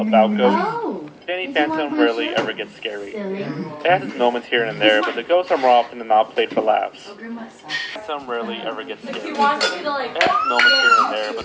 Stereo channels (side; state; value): both; identical; correlation 1.00